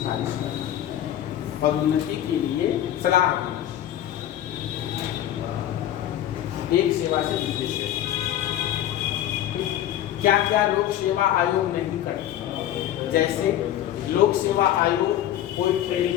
करना, पदोन्नति के लिए सलाह देना, एक सेवा से दूसरी सेवा। क्या क्या लोक सेवा आयोग नहीं करता, जैसे लोक सेवा आयोग कोई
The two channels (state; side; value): quieter; right; 12.0 dB